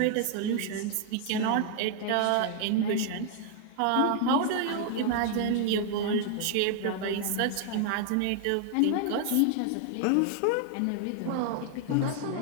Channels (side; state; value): both; different; correlation 0.00